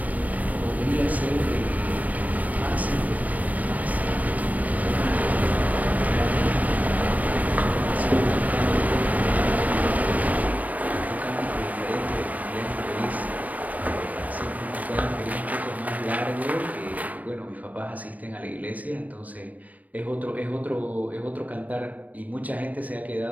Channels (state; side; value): late; left; 0.074 ms